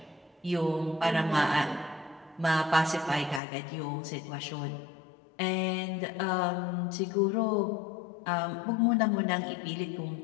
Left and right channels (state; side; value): drops out; right; at 3.4 s